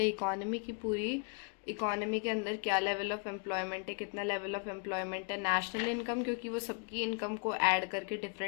की पूरी इकोनॉमी के अंदर क्या लेवल ऑफ एम्प्लॉयमेंट है, कितना लेवल ऑफ एम्प्लॉयमेंट है। नेशनल इनकम, क्योंकि वो सबकी इनकम को ऐड करके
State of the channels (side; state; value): right; quieter; 38.4 dB